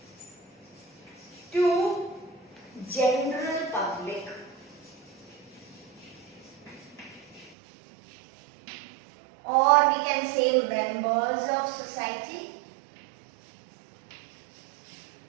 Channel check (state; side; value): drops out; left; at 7.6 s